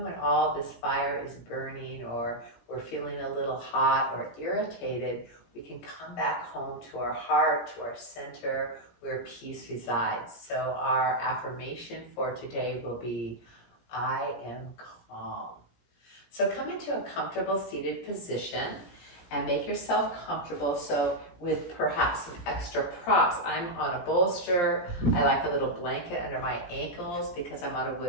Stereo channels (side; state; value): right; late; 17 ms